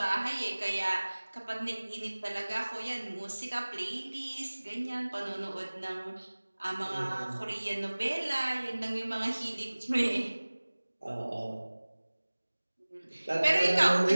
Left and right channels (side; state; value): both; inverted; correlation -1.00